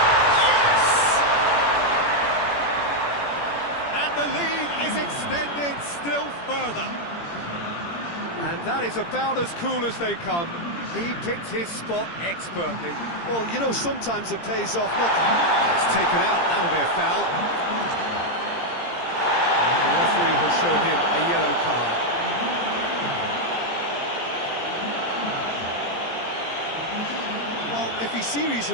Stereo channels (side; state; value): right; late; 17 ms